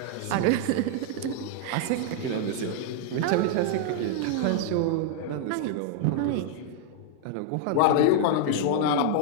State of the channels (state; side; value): different; both; correlation 0.00